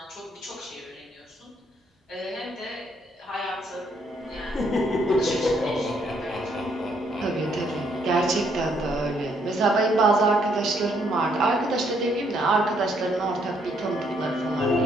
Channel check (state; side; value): normal; both; correlation 0.71